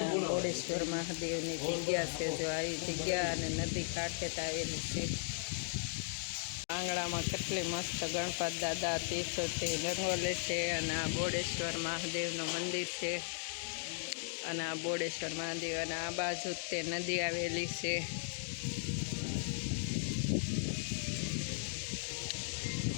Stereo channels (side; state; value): right; silent; digital silence